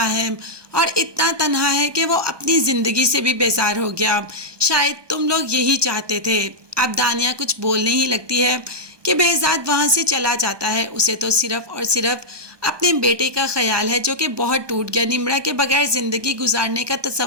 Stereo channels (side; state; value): left; late; 1.2 ms